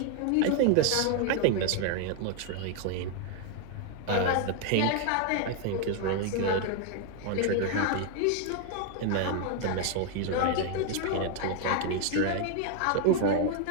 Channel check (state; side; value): different; both; correlation 0.01